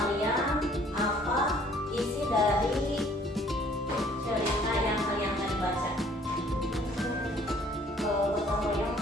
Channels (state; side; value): normal; both; correlation 0.58